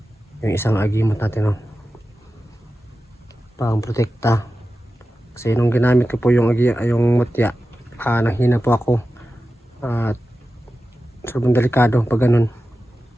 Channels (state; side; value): normal; both; correlation 0.93